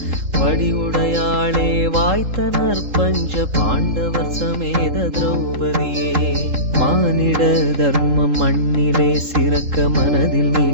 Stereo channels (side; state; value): left; late; 3.7 ms